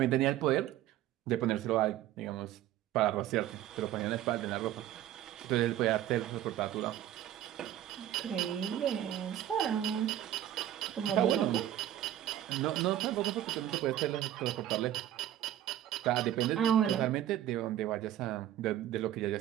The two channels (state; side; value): quieter; left; 12.2 dB